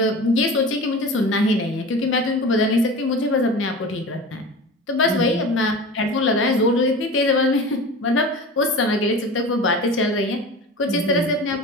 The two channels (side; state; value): both; normal; correlation 0.34